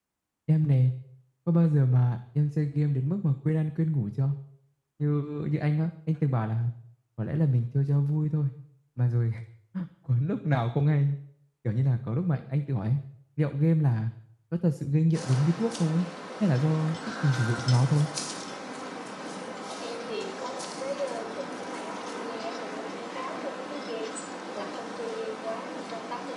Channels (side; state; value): both; identical; correlation 1.00